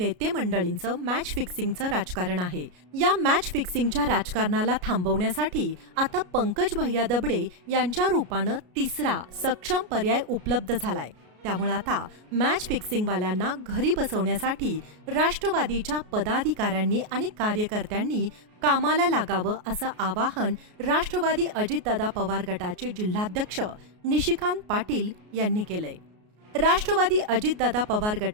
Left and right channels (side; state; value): left; late; 33 ms